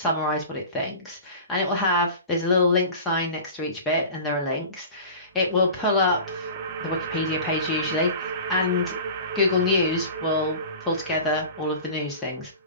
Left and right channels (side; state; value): both; inverted; correlation -0.36